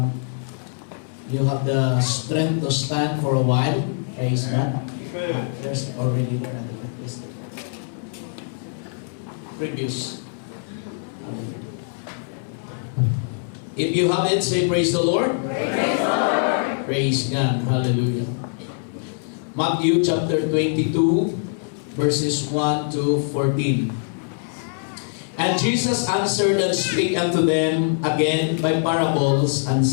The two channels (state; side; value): silent; right; 63 dB below the other